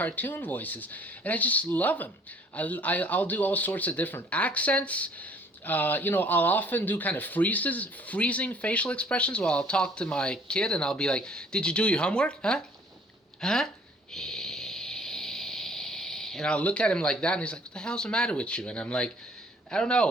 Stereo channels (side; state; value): both; normal; correlation 0.57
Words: voices. And I just love them. I'll do all sorts of different accents. I'll often do kind of freezing facial expressions while I'll talk to my kid. And I'll be like, did you do your homework? Huh? And I'll look at him like that, and he's like, what the hell's the matter with you? And I'm like, I don't